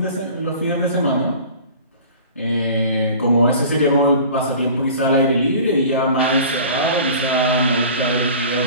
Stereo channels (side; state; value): both; inverted; correlation -0.42